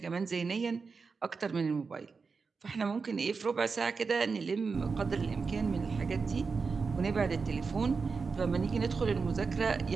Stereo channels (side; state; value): left; quieter; 4.9 dB